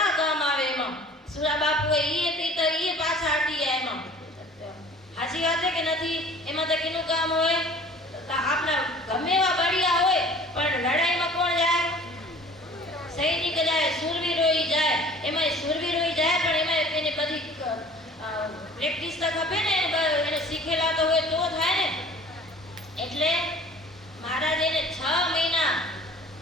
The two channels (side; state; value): both; normal; correlation 0.48